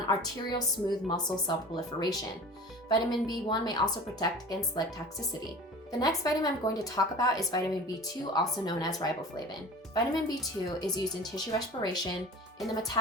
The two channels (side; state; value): both; normal; correlation 0.39